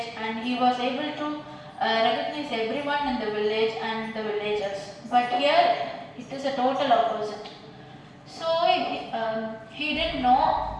and he was able to recognize everyone in the village and the villagers. But here, it is a total opposite. So he didn't know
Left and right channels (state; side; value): identical; both; correlation 1.00